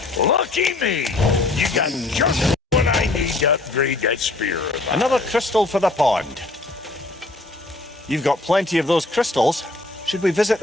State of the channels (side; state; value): right; quieter; 3.0 dB